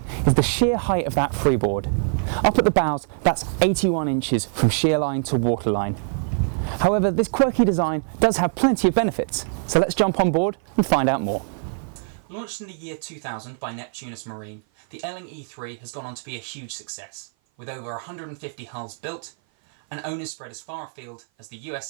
is the sheer height of that freeboard. Up at the bows, that's 81 inches from shear line to waterline. However, this quirky design does have plenty of benefits, so let's jump on board and find out more. Launched in the year 2000 by Neptunus Marine, the Elling E3 has gone on to be a huge success, with over 150 hulls built and owners spread as far afield as the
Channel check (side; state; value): left; silent; 56 dB below the other